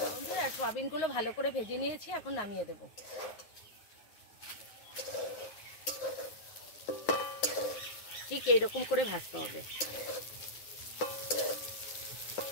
বন্ধুরা সয়াবিনগুলো ভালো করে ভেজে নিয়েছি, এখন নামিয়ে দেব। ঠিক এইরকম করে ভাজতে হবে।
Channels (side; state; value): right; late; 9.4 ms